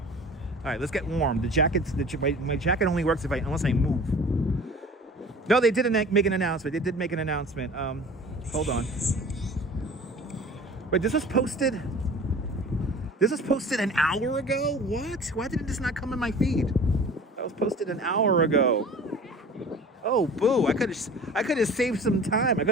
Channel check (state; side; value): normal; both; correlation 0.43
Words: right, let's get warm. The jacket's my jacket only works unless I move. No, they didn't make an announcement. They did make an announcement. Hold on. Wait, this was posted. This was posted an hour ago? What? Why did this not come in my feed? That was posted an hour ago. Oh, boo. I could have saved some time. I